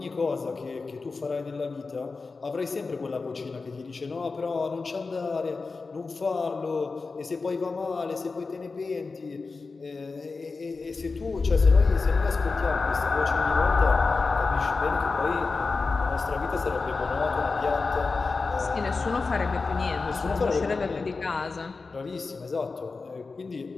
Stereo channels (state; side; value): quieter; right; 4.2 dB